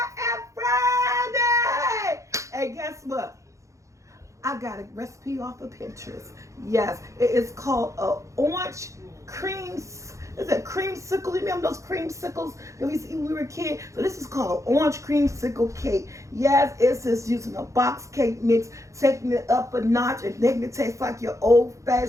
Friday. And guess what? I got a recipe off of Pinterest. Yes, it is called a orange cream. Is it creamsicle? You remember those creamsicles that we used to eat when we were a kid? So this is called an orange creamsicle cake. Yes, it's just using a box cake mix, taking it up a notch and making it taste like your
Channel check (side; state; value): left; late; 0.15 ms